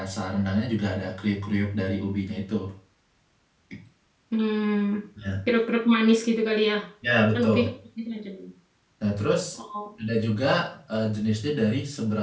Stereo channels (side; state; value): both; identical; correlation 1.00